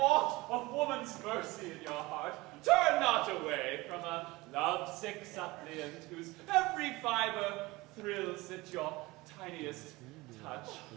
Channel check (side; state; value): left; quieter; 21.4 dB